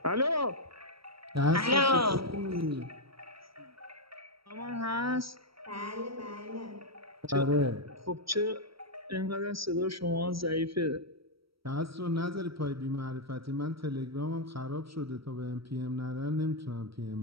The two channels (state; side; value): late; left; 0.75 ms